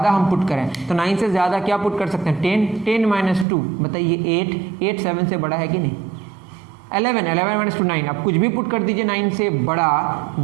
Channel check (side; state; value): left; drops out; at 3.5 s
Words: हम पुट करें तो 9 से ज़्यादा क्या पुट कर सकते हैं, 10 - 2, बताइए 8 7 से बड़ा है कि नहीं, 11 - 2 9। अब कुछ भी पुट कर दीजिए 9 से बड़ा,